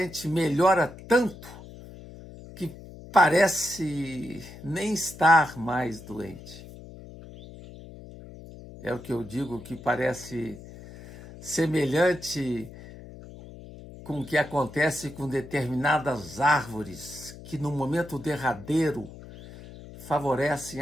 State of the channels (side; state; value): left; noise; hum, 16 dB below the sound